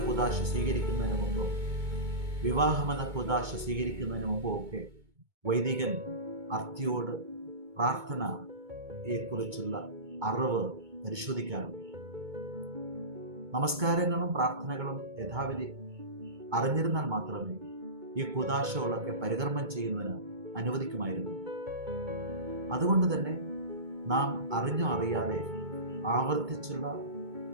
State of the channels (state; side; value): late; left; 2.2 ms